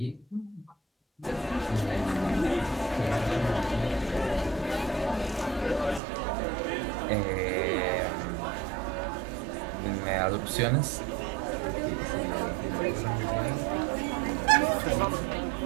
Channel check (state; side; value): drops out; left; at 6.0 s